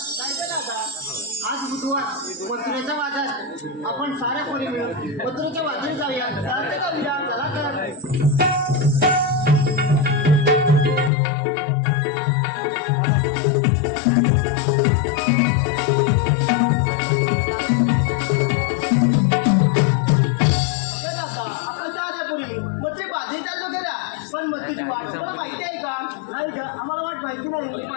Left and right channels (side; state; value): right; drops out; at 11.1 s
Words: आज बुधवार मथुरेच्या बाजारात आपण साऱ्या पोरी मिळून मथुरेच्या बाजारी जाऊया चालते का उद्या चला तर पण मथुरेची वाट तुम्हाला माहिती आहे का नाही ग आम्हाला वाट माहिती नाही